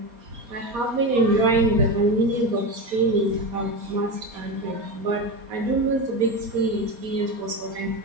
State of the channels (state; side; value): late; left; 4.2 ms